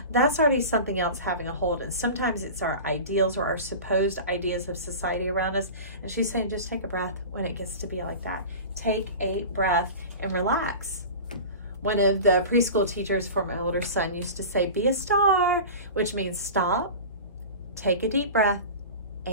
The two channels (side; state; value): both; inverted; correlation -0.33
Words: that's already something else having a hold. And sometimes it's our ideals or our supposed ideas of society around us. And she's saying, just take a breath when it gets to be like that. Take a breath and relax. One of the preschool teachers for my older son used to say, be a star, which means stop, take a deep breath,